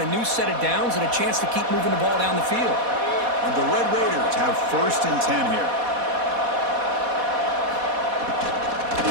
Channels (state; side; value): late; left; 4.1 ms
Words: a new set of downs and a chance to keep moving the ball down the field. And the Red Raiders have first and 10 here.